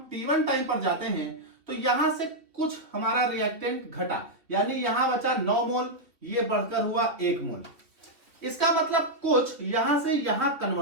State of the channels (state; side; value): late; left; 2.8 ms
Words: T1 टाइम पर जाते हैं, तो यहां से कुछ हमारा रिएक्टेंट घटा, यानी यहां बचा 9 मोल, ये बढ़कर हुआ 1 मोल। इसका मतलब कुछ यहां से यहां